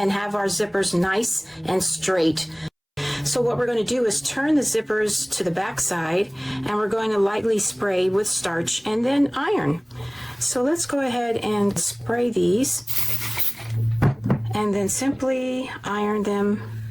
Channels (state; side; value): identical; both; correlation 1.00